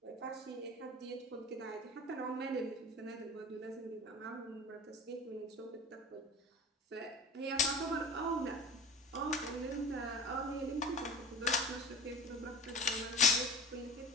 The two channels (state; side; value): normal; both; correlation 0.34